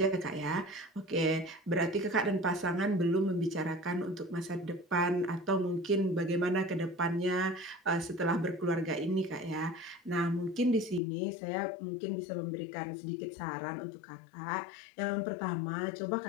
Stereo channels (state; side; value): drops out; right; at 11.0 s